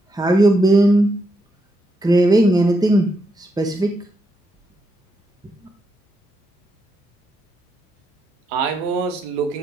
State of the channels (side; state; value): both; normal; correlation 0.81